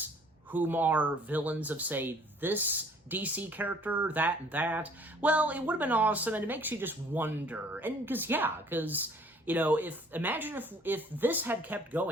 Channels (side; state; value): both; normal; correlation 0.56